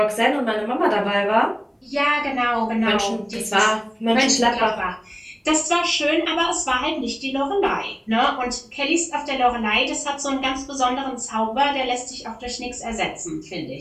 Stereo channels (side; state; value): both; identical; correlation 1.00